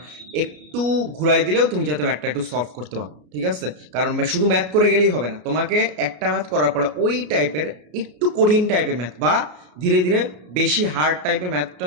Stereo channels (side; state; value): left; late; 33 ms